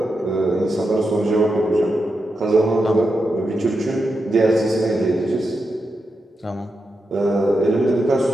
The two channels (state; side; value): normal; both; correlation 0.87